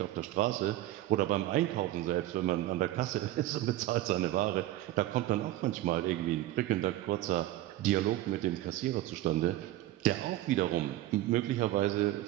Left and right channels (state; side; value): quieter; left; 15.2 dB